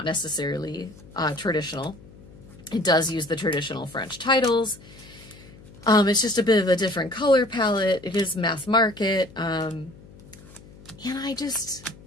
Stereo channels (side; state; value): left; noise; hum, 21 dB below the sound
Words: necessarily traditional. It does use the traditional French titles. It's just a bit of a different color palette. It is mass market. And I just,